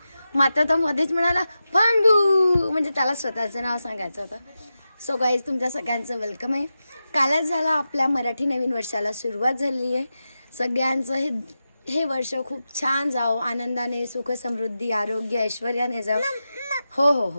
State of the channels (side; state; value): both; inverted; correlation -0.91